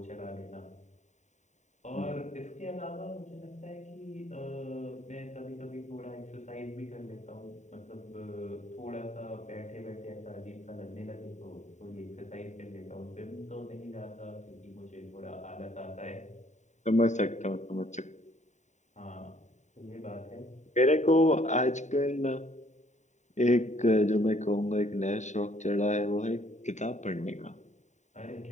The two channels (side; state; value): right; late; 0.34 ms